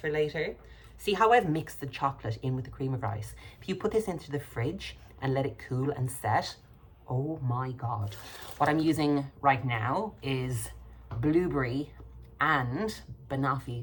later. See how I've mixed the chocolate in with the cream of rice? If you put this into the fridge and let it cool and set, oh my God. What I'm using right now is blueberry and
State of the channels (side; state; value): both; identical; correlation 1.00